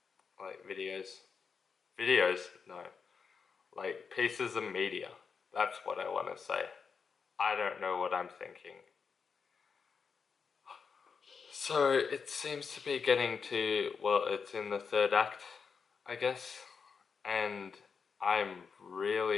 like videos. Videos? No. Like pieces of media. That's what I want to say. I don't know what I'm thinking. So it seems to be getting to, well, it's in the third act, I guess. And I'm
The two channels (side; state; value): right; quieter; 5.8 dB